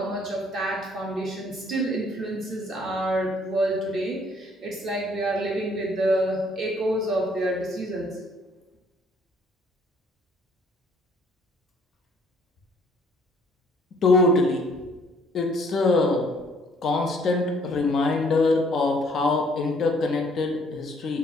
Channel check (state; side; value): normal; both; correlation 0.62